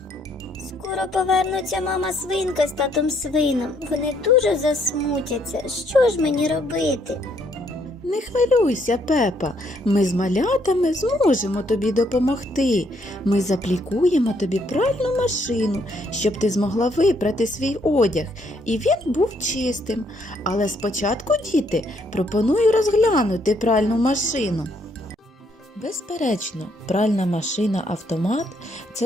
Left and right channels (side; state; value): both; normal; correlation 0.70